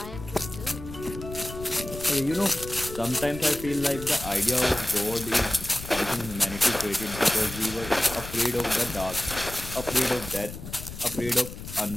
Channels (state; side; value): noise; left; rumble, 11 dB below the sound